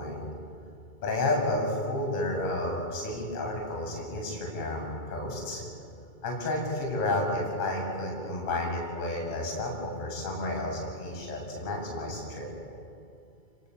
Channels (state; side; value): late; right; 2.3 ms